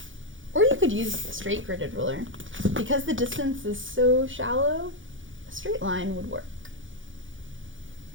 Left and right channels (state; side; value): late; left; 0.57 ms